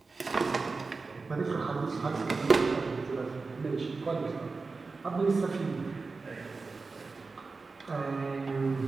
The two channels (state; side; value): quieter; left; 4.1 dB